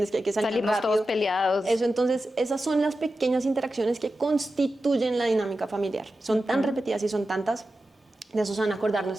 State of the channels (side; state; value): both; normal; correlation 0.92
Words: que hay que salir Salimos rápido? todos peleados. Eso, entonces, esas son las pequeñas interacciones que constituyen la dinámica familiar. Son tan repetidas y son tantas De eso se van a acordar